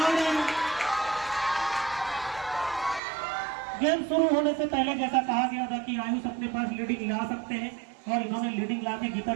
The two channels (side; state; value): left; drops out; at 3.0 s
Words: गेम शुरू होने से पहले जैसा कहा गया था कि आयुष अपने पास लीडिंग ला सकते हैं, और इन्होंने लीडिंग ला के गीता